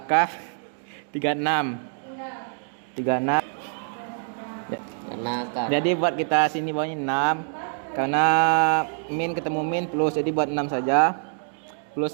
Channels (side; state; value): left; silent; digital silence